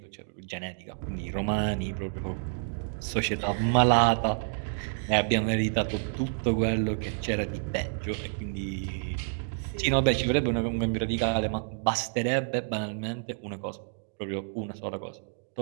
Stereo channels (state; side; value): silent; left; digital silence